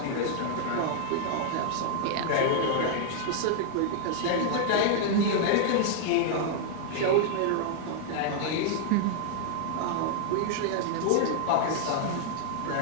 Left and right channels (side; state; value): both; different; correlation 0.00